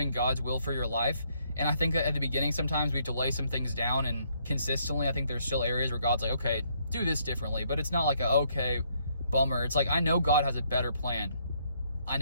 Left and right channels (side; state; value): both; inverted; correlation -0.70